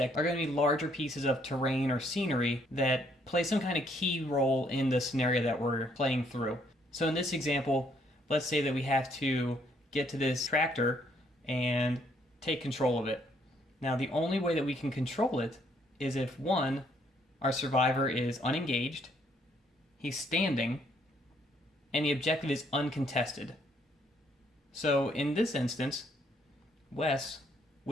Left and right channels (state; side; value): normal; both; correlation 0.68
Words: are going to be larger pieces of terrain or scenery that play some kind of key role in the scenario that we're playing through. So in this example, let's say that we have to get to this tractor and take control of it. Now, the only way that we can control it is if, one, our survivor is unengaged, he's standing, and the objective is uncontested. So in this instance, Wes